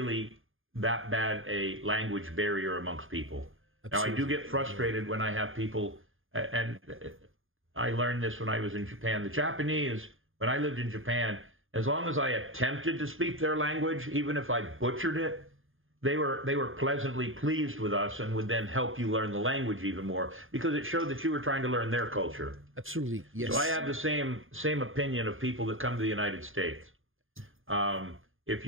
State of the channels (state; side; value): late; left; 0.59 ms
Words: that bad a language barrier amongst people. Absolutely. Now, I do get frustrated when I have people, and I learned this when I was in Japan. The Japanese, when I lived in Japan, as long as I attempted to speak their language, even if I butchered it, they were pleasantly pleased with us and would then help you learn the language even more because it showed that you were trying to learn their culture. Absolutely, yes. So I have the same opinion of people that come to the United States. If